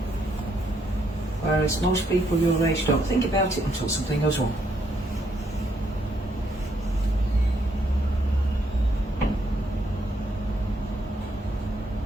Whereas most people your age don't think about it until something goes wrong.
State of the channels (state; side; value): normal; both; correlation 0.74